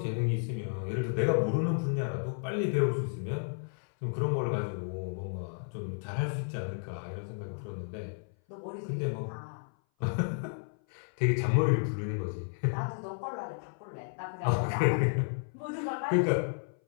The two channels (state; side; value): silent; right; 56 dB below the other